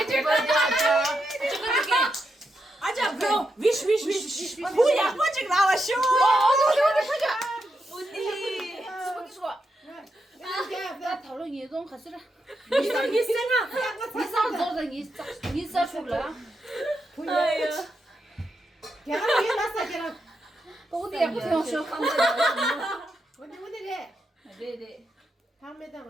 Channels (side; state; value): both; normal; correlation 0.84